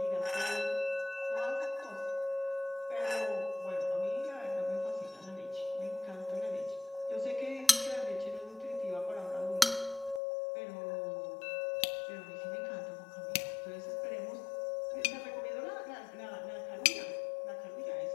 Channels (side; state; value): right; drops out; at 10.2 s